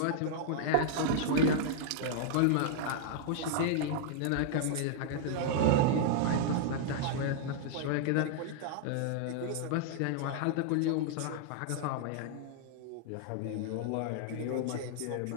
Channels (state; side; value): different; both; correlation -0.01